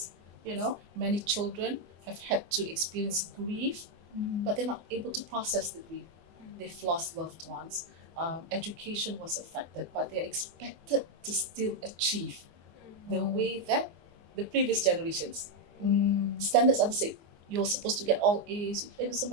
many children have had to experience grief, but they're not able to process the grief. They've lost loved ones. Education was affected, but they're expected to still achieve the way that the previous generations. Standards are the same. You're supposed to get all A's,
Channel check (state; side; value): late; left; 24 ms